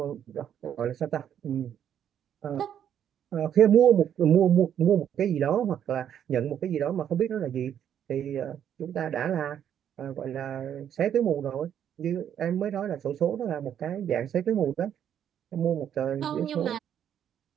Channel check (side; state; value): left; quieter; 9.5 dB